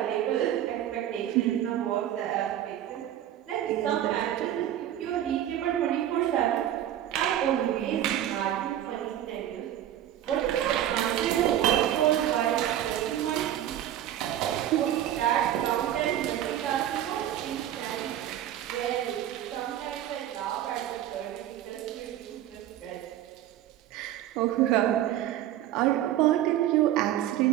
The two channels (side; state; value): left; quieter; 11.9 dB